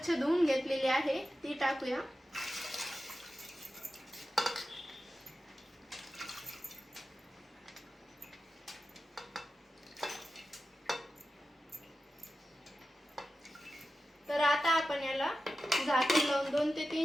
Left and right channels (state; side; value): normal; both; correlation 0.93